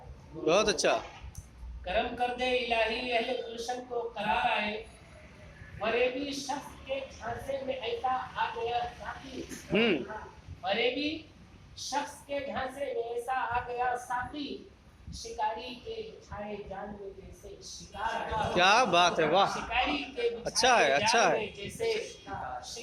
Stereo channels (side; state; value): both; identical; correlation 1.00